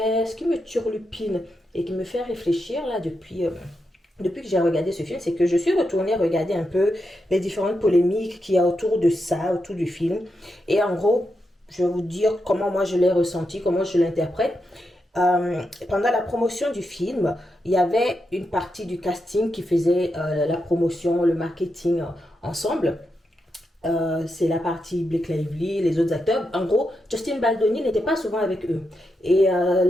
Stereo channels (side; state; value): both; normal; correlation 0.85